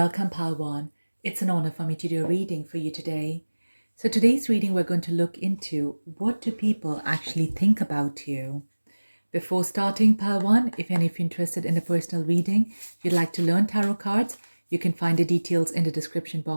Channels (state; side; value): inverted; both; correlation -1.00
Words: Pal 1. It's an honor for me to do a reading for you today. So today's reading, we're going to look into what do people actually think about you. Before starting, Pal 1, if any of you interested in a personal reading, if you'd like to learn tarot cards, you can find the details in the description